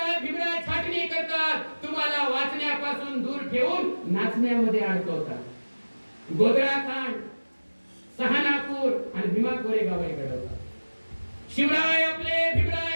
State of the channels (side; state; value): both; inverted; correlation -1.00